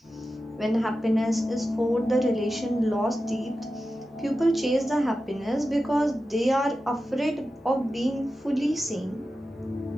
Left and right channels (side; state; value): both; normal; correlation 0.92